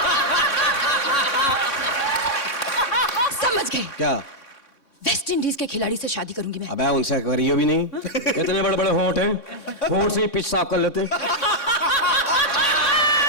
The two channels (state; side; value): late; right; 3.6 ms